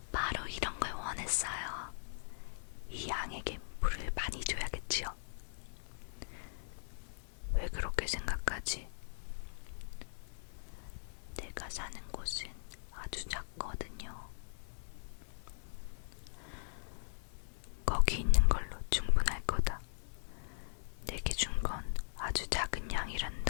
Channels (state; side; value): silent; right; 51 dB below the other